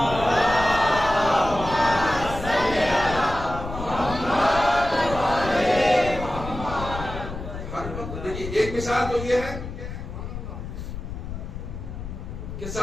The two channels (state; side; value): noise; left; rumble, 9 dB below the sound